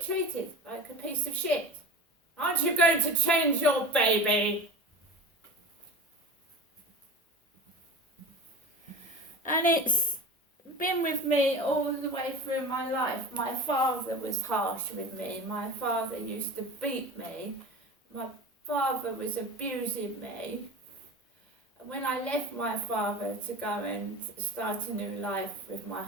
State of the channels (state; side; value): normal; both; correlation 0.32